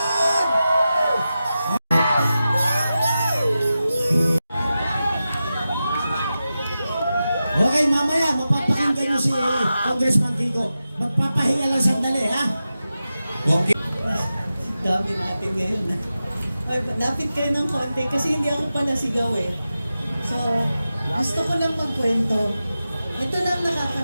Okay, mamaya mapapakinggan niyo si Congressman Kiko. Magpapahinga lang sandali, ha? Okay. Dami natin ngayon. Ay, lapit kayo ng konti kasi hindi ako pala sigaw eh. So, gusto ko lang magkwento. Ito lang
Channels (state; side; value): inverted; both; correlation -0.92